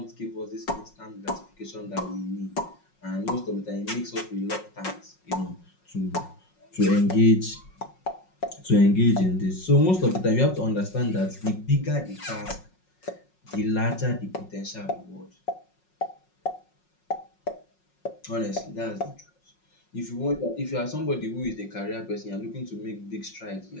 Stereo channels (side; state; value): right; late; 5.5 ms